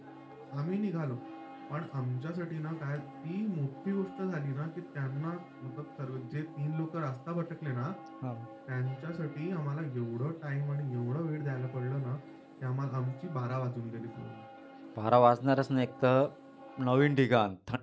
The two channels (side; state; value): both; identical; correlation 1.00